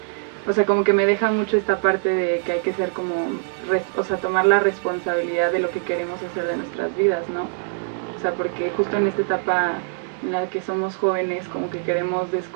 o sea, como que me deja mucho esta parte de que hay que ser como, o sea, tomar la responsabilidad de lo que queremos hacer de nuestras vidas, ¿no? O sea, porque justo en esta etapa en la que somos jóvenes, como que queremos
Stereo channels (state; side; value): silent; left; digital silence